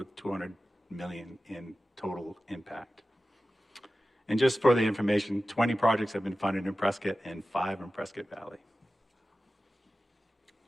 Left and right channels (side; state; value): both; normal; correlation 0.95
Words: $200 million in total impact. And just for the information, 20 projects have been funded in Prescott and 5 in Prescott Valley.